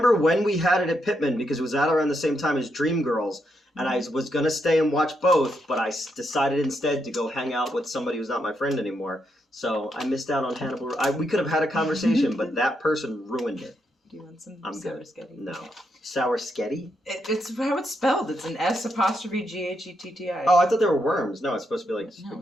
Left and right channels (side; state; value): both; normal; correlation 0.80